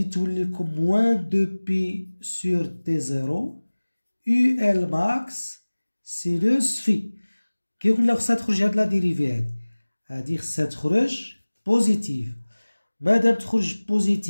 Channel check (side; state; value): both; inverted; correlation -1.00